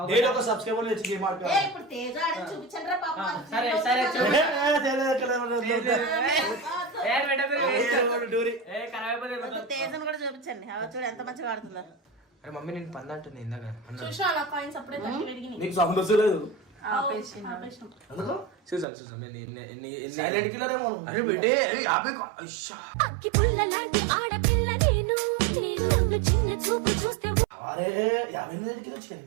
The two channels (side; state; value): left; drops out; at 18.9 s